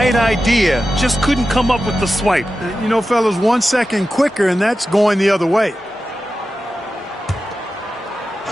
idea, just couldn't come up with the swipe. You know, fellas, 1 second quicker, and that's going the other way.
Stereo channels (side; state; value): both; normal; correlation 0.93